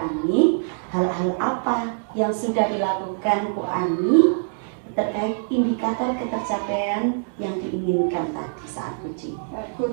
hal-hal apa yang sudah dilakukan Bu Ani terkait indikator ketercapaian yang diinginkan tadi saat coaching.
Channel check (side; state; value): left; silent; digital silence